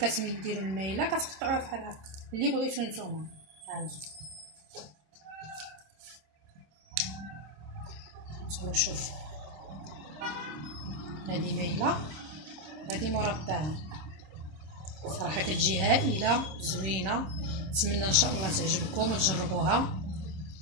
المايله كتقطعوها بحال هكا، اللي بغيتو نتوما. هانتوما شوف، هذه مايله هذه مربعه، صراحه كتجي هائله زوينه. نتمنى ان شاء الله تعجبكم وتجربوها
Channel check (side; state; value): left; late; 26 ms